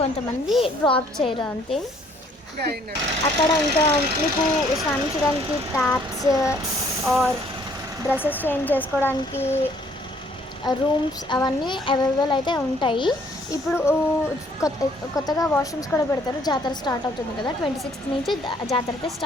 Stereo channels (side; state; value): both; normal; correlation 0.62